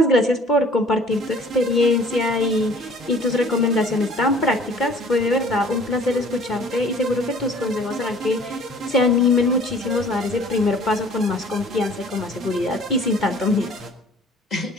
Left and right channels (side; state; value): both; normal; correlation 0.52